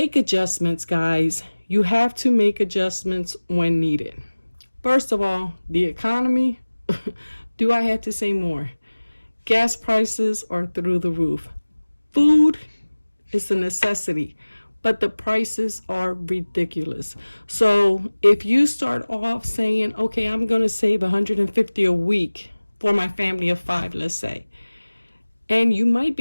adjustments, guys. You have to make adjustments when needed. First of all, the economy. Do I have to say more? Gas prices are through the roof. Food is a necessity, but the prices are ridiculous. So if you start off saying, okay, I'm going to save $150 a week for my family of 5, let's say, and you might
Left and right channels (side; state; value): both; inverted; correlation -1.00